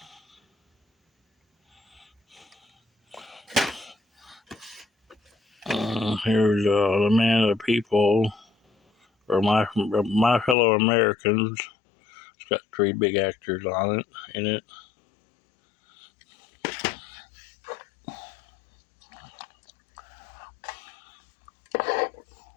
Here's The Man of the People, or My Fellow Americans. It's got 3 big actors in it.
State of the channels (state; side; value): drops out; right; at 10.6 s